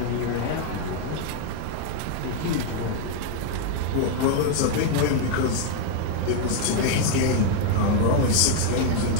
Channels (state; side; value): different; both; correlation 0.00